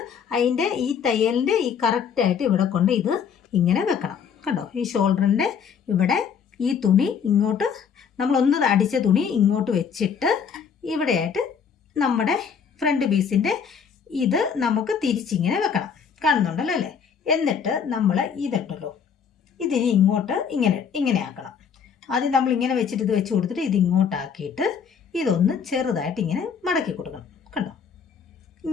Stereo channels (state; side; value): quieter; right; 6.9 dB